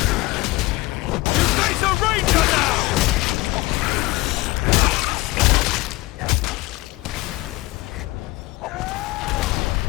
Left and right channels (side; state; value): right; quieter; 20.7 dB